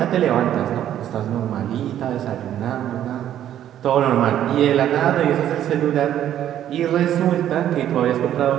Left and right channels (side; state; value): left; quieter; 11.1 dB